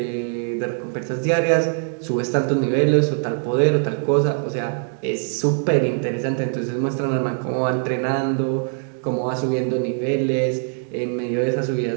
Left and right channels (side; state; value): left; silent; 56 dB below the other